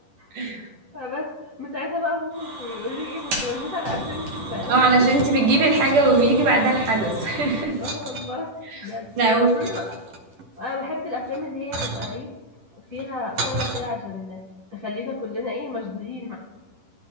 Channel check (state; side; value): late; left; 10 ms